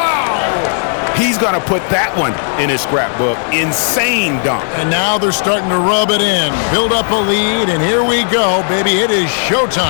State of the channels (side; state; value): right; silent; digital silence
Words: He's going to put that one in his scrapbook. Insane dunk. And now they're starting to rub it in. Build up a lead, and here we go, baby. It is